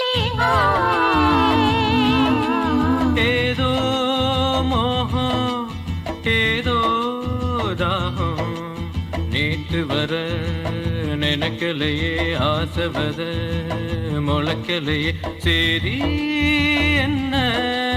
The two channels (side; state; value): both; identical; correlation 1.00